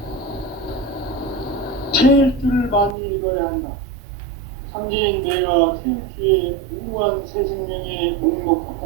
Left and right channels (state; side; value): drops out; left; at 3.0 s